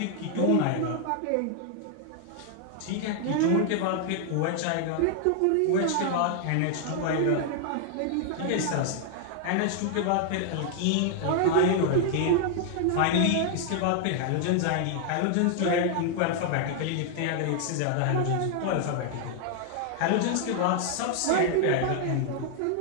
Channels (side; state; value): both; different; correlation 0.00